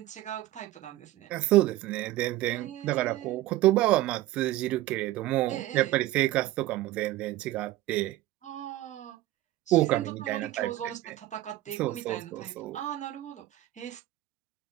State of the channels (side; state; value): left; quieter; 16.0 dB